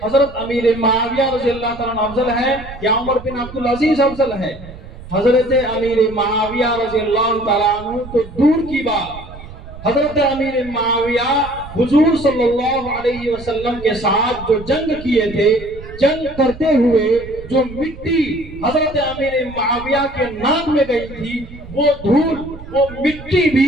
حضرت امیر معاویہ رضی اللہ تعالیٰ افضل ہے یا عمر بن عبدالعزیز افضل ہے؟ حضرت امیر معاویہ رضی اللہ تعالیٰ عنہ تو دور کی بات، حضرت امیر معاویہ حضور صلی اللہ علیہ وسلم کے ساتھ جو جنگ کیے تھے، جنگ کرتے ہوئے جو مٹی حضرت امیر معاویہ کے ناک میں گئی تھی، وہ دھول، وہ مٹی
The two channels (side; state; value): right; noise; rumble, 15 dB below the sound